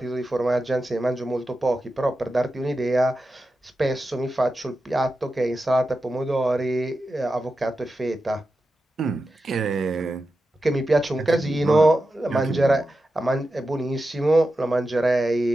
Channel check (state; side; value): normal; both; correlation 0.91